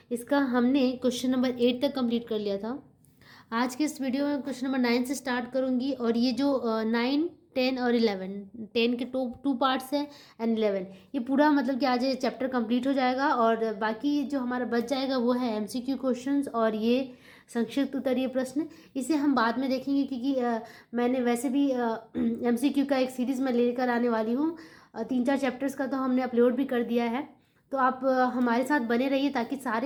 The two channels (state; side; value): identical; both; correlation 1.00